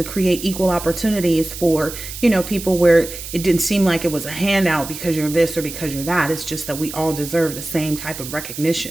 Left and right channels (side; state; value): right; noise; hiss, 10 dB below the sound